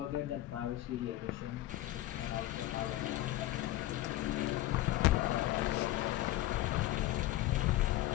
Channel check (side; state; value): right; quieter; 15.6 dB